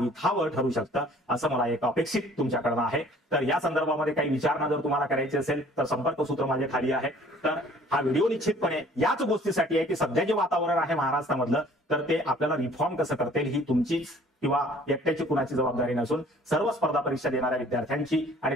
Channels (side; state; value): both; normal; correlation 0.54